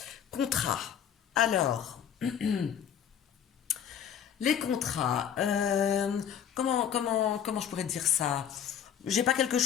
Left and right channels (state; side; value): quieter; right; 8.8 dB